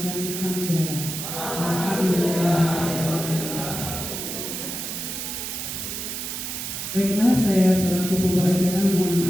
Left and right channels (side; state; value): right; noise; hiss, 5 dB below the sound